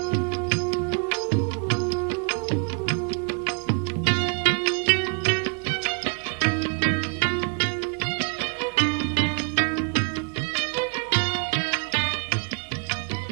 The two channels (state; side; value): quieter; left; 37.2 dB